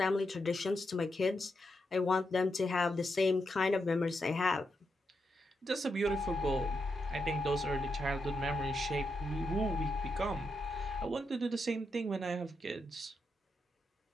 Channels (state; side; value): normal; both; correlation 0.84